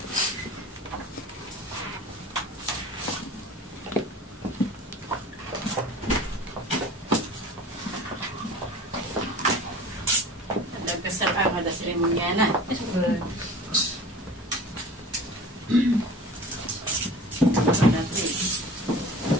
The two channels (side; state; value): both; normal; correlation 0.41